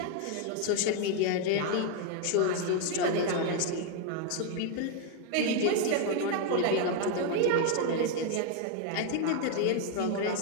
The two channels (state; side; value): different; both; correlation 0.01